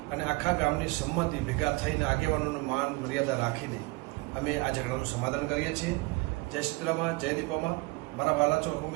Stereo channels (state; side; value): quieter; left; 24.0 dB